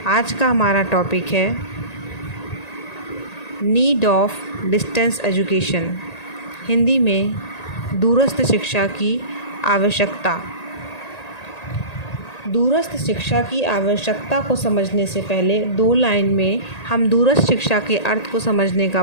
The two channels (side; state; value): right; late; 1.8 ms